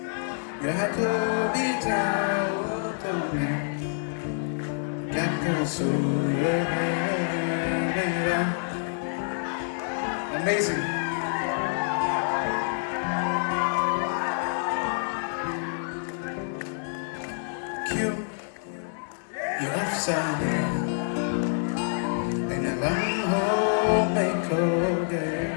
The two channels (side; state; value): right; silent; 60 dB below the other